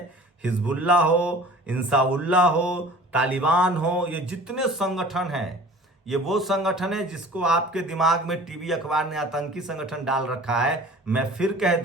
हिजबुल्ला हो, इंसाउल्लाह हो, तालिबान हो, ये जितने संगठन हैं, ये वो संगठन है जिसको आपके दिमाग में टीवी अखबार ने आतंकी संगठन डाल रखा है। मैं फिर कह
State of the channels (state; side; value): normal; both; correlation 0.45